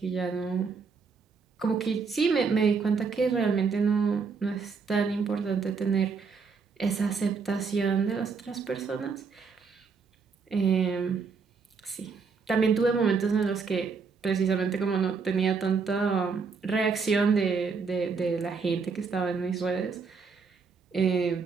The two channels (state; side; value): quieter; left; 5.2 dB